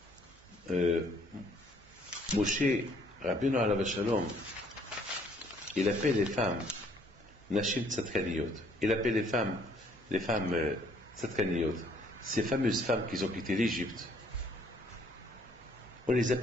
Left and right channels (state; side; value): normal; both; correlation 0.63